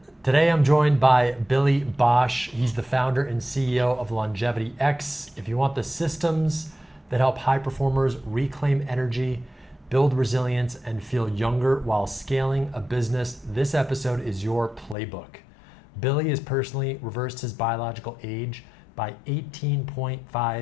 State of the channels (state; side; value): drops out; right; at 15.0 s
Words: Today I'm joined by Billy Bosch. He's the founder and CEO of LongevityX. If you want the systems that help high performers reclaim energy, build resilience, and feel younger while scaling a business, this episode is your playbook. Billy has personally reversed his biological age by